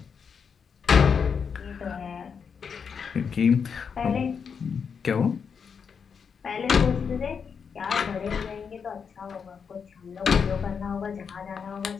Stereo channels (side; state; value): right; quieter; 6.4 dB